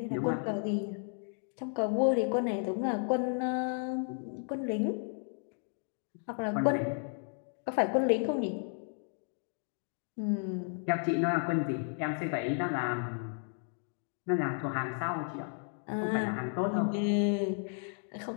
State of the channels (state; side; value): silent; right; 55 dB below the other